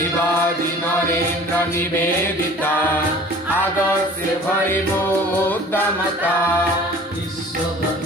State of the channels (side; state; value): both; normal; correlation 0.46